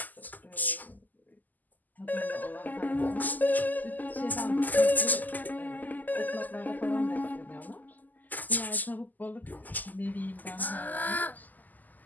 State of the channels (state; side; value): late; right; 0.083 ms